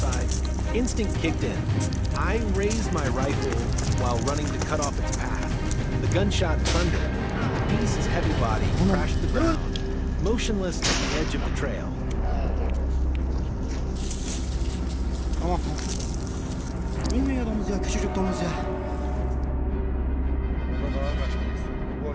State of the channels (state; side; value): identical; both; correlation 1.00